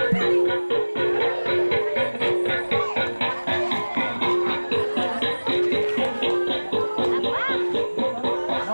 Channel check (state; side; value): inverted; both; correlation -1.00